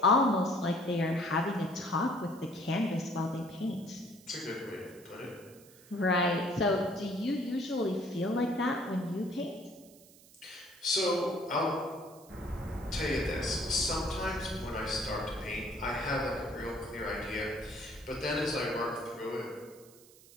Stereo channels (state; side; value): noise; right; hiss, 24 dB below the sound